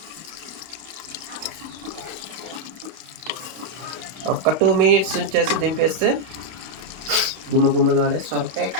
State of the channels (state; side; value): late; left; 31 ms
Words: ఒక 2 మినిట్స్ ఉంచేసి దింపేస్తే గుమ్మగుమ్మలాడే సొరకాయ